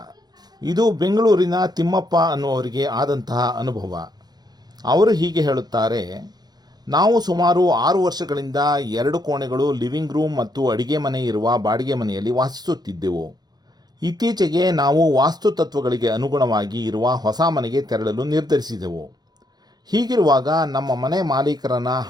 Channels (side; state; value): left; late; 0.19 ms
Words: ಇದು ಬೆಂಗಳೂರಿನ ತಿಮ್ಮಪ್ಪ ಅನ್ನುವರಿಗೆ ಆದಂತಹ ಅನುಭವ. ಅವರು ಹೀಗೆ ಹೇಳುತ್ತಾರೆ. ನಾವು ಸುಮಾರು 6 ವರ್ಷಗಳಿಂದ 2 ಕೋಣೆಗಳು, ಲಿವಿಂಗ್ ರೂಮ್ ಮತ್ತು ಅಡಿಗೆ ಮನೆ ಇರುವ ಬಾಡಿಗೆ ಮನೆಯಲ್ಲಿ ವಾಸಿಸುತ್ತಿದ್ದೆವು. ಇತ್ತೀಚೆಗೆ ನಾವು ವಾಸ್ತುತತ್ವಗಳಿಗೆ ಅನುಗುಣವಾಗಿ ಇರುವ ಹೊಸ ಮನೆಗೆ ತೆರಳಲು ನಿರ್ಧರಿಸಿದೆವು. ಹೀಗಿರುವಾಗ ನಮ್ಮ ಮನೆ ಮಾಲೀಕರನ